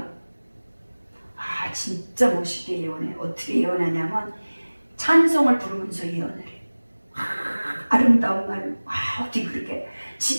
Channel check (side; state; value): both; inverted; correlation -1.00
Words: 진짜 멋있게 예언해. 어떻게 예언하냐면 찬송을 부르면서 예언을 해. 아름다운 말. 어떻게 그렇게